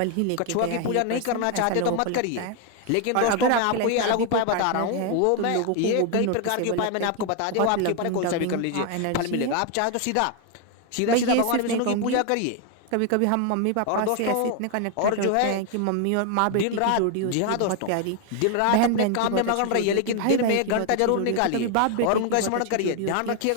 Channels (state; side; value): different; both; correlation 0.01